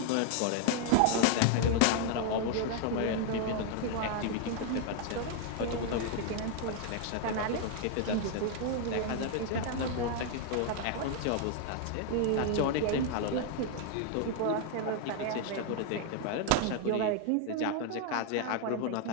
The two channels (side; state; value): both; different; correlation 0.00